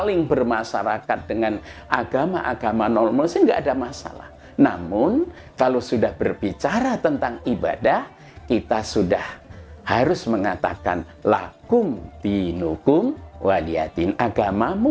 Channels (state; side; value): identical; both; correlation 1.00